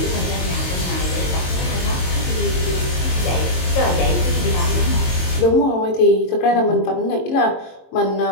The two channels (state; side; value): late; right; 22 ms